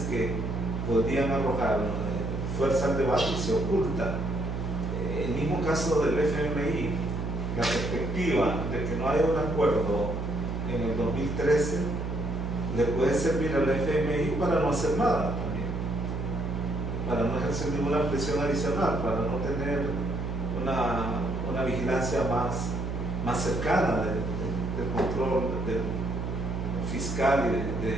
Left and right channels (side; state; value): right; noise; hum, 3 dB below the sound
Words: que podrían arrojar fuerza al debate y se oculta. El mismo caso del FMI, la perspectiva de que no haya un acuerdo en el 2013 le puede servir al FMI para no hacer nada también, para no ejercer ninguna presión adicional, para no tener una vigilancia más cercana del control fiscal y de